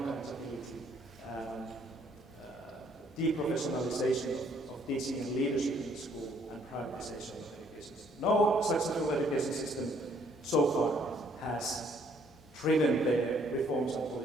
deprofessionalization of teaching and leadership in school, and privatization of education system. No successful education system so far has driven their reforms and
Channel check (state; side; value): noise; left; hum, 29 dB below the sound